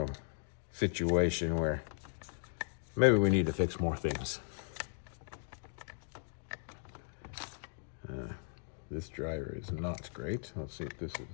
situation where maybe we need to fix more things. This driver is not great. Let's see if this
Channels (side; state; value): right; silent; digital silence